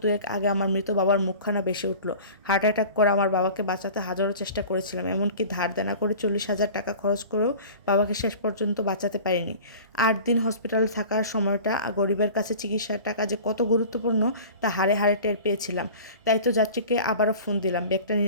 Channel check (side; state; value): both; inverted; correlation -0.40